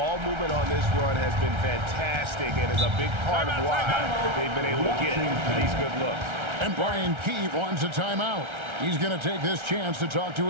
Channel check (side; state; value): left; late; 1.3 ms